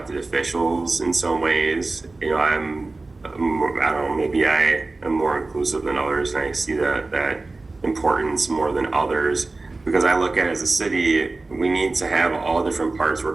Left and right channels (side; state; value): left; quieter; 3.4 dB